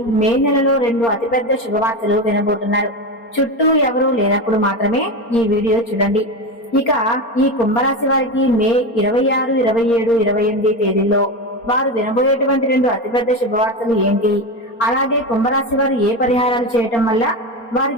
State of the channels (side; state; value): right; late; 4.3 ms